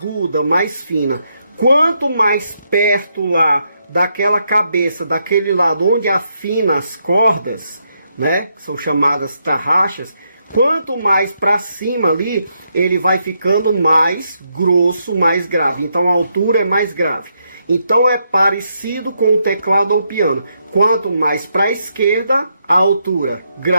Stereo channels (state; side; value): inverted; both; correlation -0.79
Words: mais fina. Quanto mais perto lá daquela cabeça, daquele lado onde afina as cordas, né, que são chamadas tarraxas, quanto mais para cima ali, ele vai ficando mais grosso, mais grave. Então a altura é mais grave. Então é parecido com o teclado ou piano. Quanto mais para a esquerda, a altura